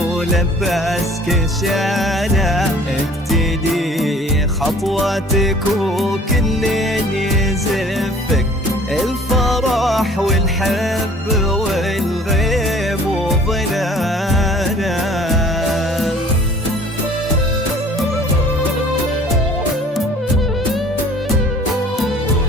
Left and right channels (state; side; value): normal; both; correlation 0.51